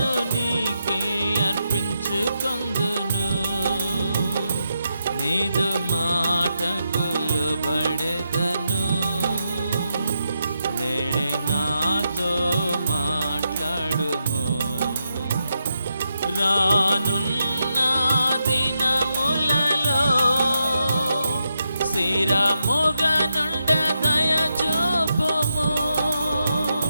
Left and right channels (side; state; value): both; inverted; correlation -0.84